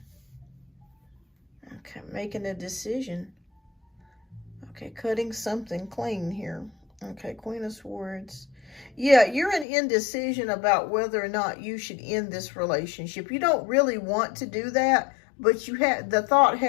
Okay, making a decision. Okay, cutting something clean here. Okay, Queen of Swords. Yeah, you're in indecision about whether or not you should end this relationship. You don't really want to do that, but you have the thought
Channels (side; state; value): right; drops out; at 9.7 s